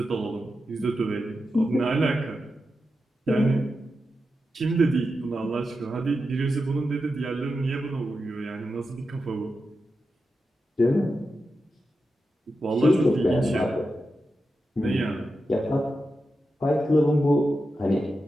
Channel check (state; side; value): normal; both; correlation 0.89